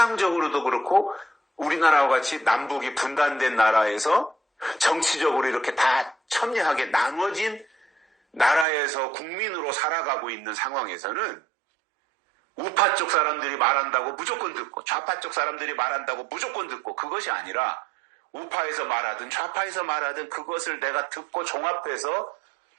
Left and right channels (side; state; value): left; drops out; at 8.7 s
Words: 그렇고 우리나라와 같이 남북이 분단된 나라에서 정치적으로 이렇게 다 첨예하게 나눠진 나라에서 국민으로 살아가고 있는 상황에서는 우파 쪽 사람들이 말한다고 무조건 듣고 좌파 쪽 사람들이 말한다고 무조건 듣고 그것이 아니라 우파에서 말하든 좌파에서 말하든 그것을 내가 듣고 종합해서